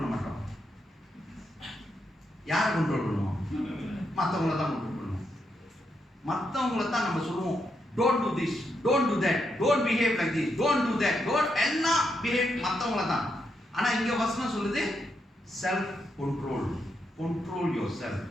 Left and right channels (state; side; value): normal; both; correlation 0.81